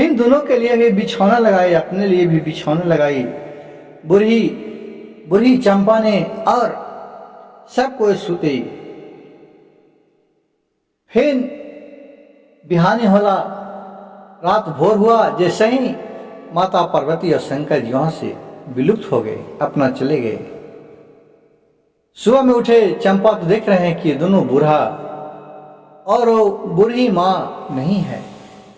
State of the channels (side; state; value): both; identical; correlation 1.00